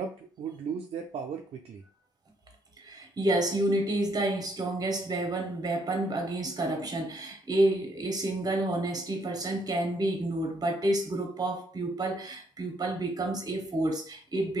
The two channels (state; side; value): normal; both; correlation 0.71